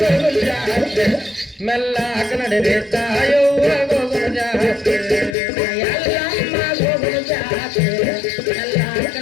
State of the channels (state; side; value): drops out; right; at 5.4 s